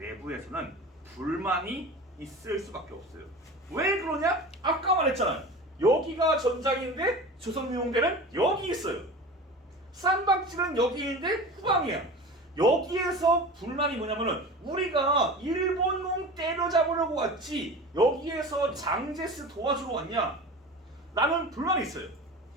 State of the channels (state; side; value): normal; both; correlation 0.34